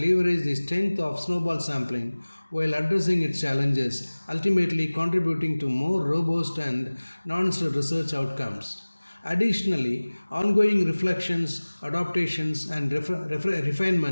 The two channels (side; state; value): both; inverted; correlation -1.00